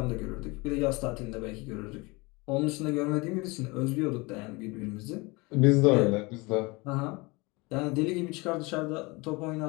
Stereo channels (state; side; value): quieter; right; 25.6 dB